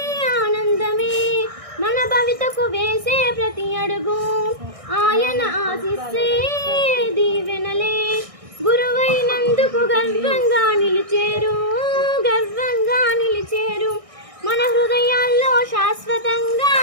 ఆనందమే. మన భవితకు వేసే ప్రతి అడుగు ఆయన ఆశిస్సే దీవెనలే. గురువైనందుకు గర్వంగా నిలిచేరు, గర్వంగా నిలిచేరు. మన హృదయాల్లో శాశ్వతంగా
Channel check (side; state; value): left; late; 1.6 ms